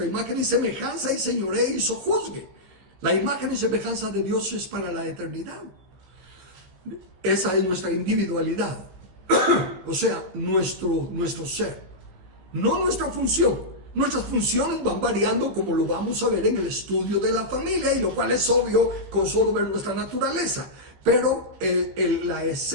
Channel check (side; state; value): left; late; 16 ms